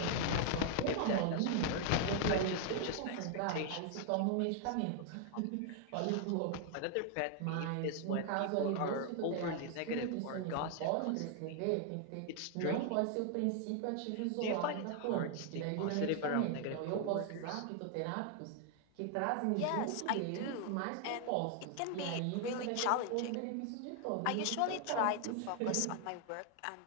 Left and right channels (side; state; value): both; different; correlation 0.00